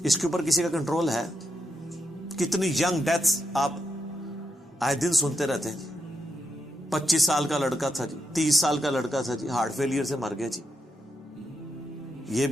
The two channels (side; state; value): both; normal; correlation 0.83